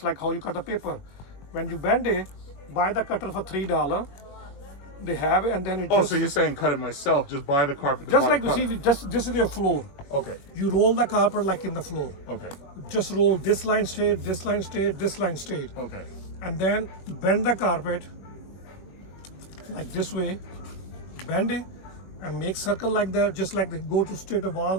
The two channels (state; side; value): late; right; 21 ms